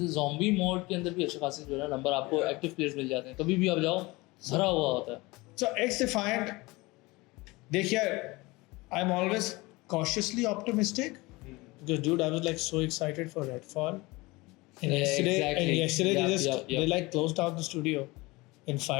zombie mode के अंदर भी अच्छे खासे जो है ना number आपको active players मिल जाते हैं कभी भी आप जाओ भरा हुआ होता है. So X-Defiant, देखिए, I'm always cautiously optimistic because dude, I was like so excited for Redfall. And Yeah, yesterday, exactly. Yep. they like closed down the studio and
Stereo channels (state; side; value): quieter; right; 22.7 dB